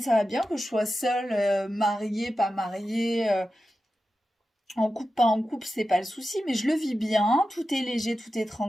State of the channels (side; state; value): both; normal; correlation 0.92